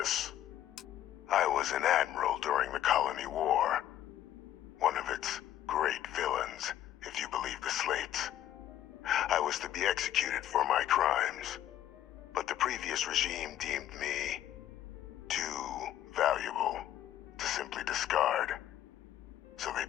I was an admiral during the Colony War. One of its great villains, if you believe the slates. I was to be executed for my crimes, but the previous regime deemed me too valuable to simply discard. So they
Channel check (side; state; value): right; quieter; 12.0 dB